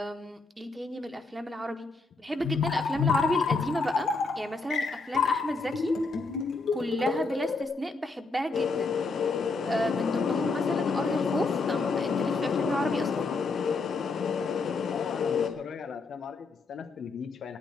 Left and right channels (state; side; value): quieter; right; 3.8 dB